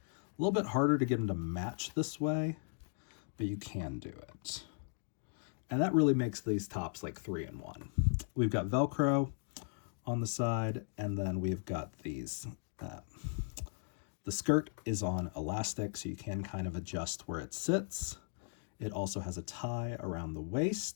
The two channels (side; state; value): right; silent; 53 dB below the other